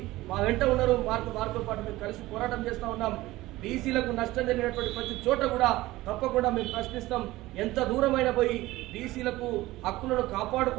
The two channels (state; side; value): quieter; left; 18.0 dB